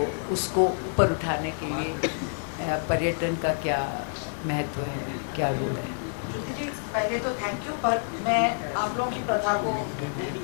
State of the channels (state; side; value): silent; right; 60 dB below the other